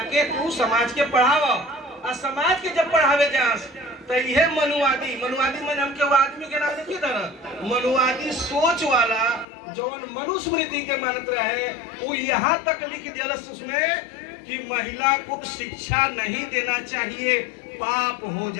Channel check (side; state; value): right; drops out; at 9.5 s